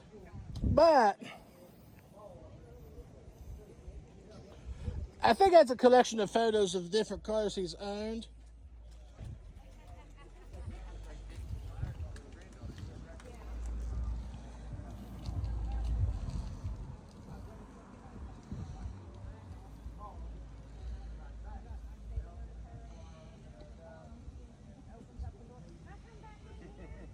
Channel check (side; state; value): both; identical; correlation 1.00